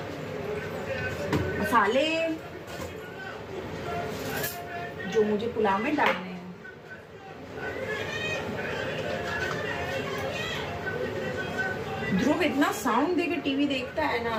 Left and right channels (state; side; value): identical; both; correlation 1.00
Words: मसाले जो मुझे पुलाव में डालने हैं। ध्रुव इतना साउंड देके टीवी देखता है ना,